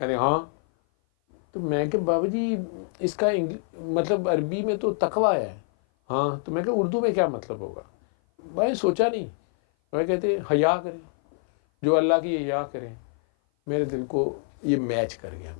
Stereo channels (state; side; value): silent; right; 57 dB below the other